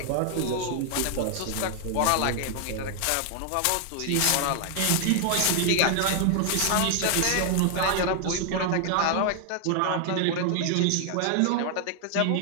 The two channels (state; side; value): different; both; correlation 0.00